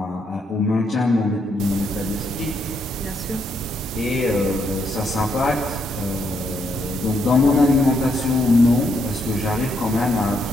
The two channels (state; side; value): normal; both; correlation 0.76